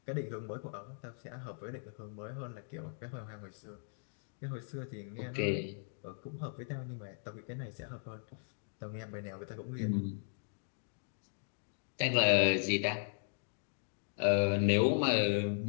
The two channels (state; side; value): silent; right; digital silence